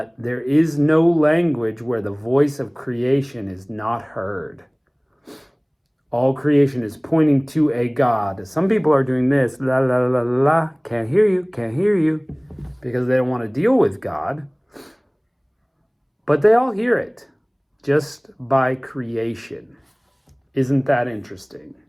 there is no language where the voice of creation is not heard. All creation is pointing to a God. Some people are doing this, la la la la la, can't hear you, because they don't want to deal with God. But they all hear it, just by creation. Isn't that interesting?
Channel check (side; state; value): both; identical; correlation 1.00